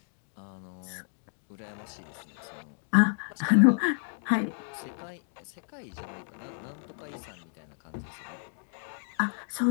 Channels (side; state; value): right; silent; 57 dB below the other